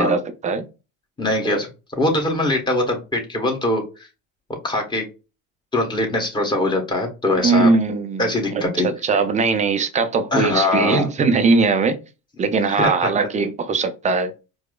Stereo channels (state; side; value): normal; both; correlation 0.33